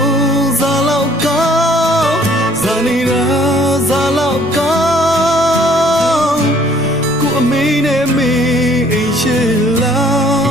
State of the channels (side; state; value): both; normal; correlation 0.59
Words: ဇာလောက်ကောင်းဇာနေရာဇာလောက်ကောင်းကိုအမေနဲ့မေအိမ်ရှိလာ